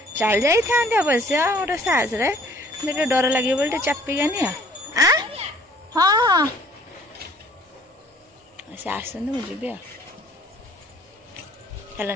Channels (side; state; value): both; normal; correlation 0.56